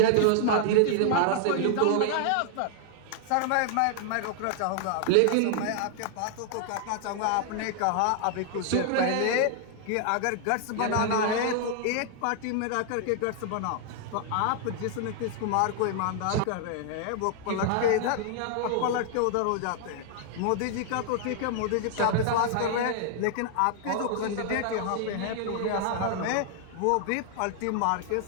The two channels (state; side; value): different; both; correlation 0.00